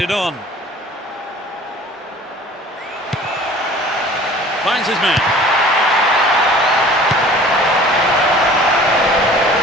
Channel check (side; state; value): both; normal; correlation 0.46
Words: on. Finds his man.